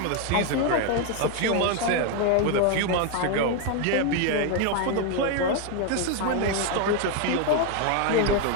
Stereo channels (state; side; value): different; both; correlation 0.01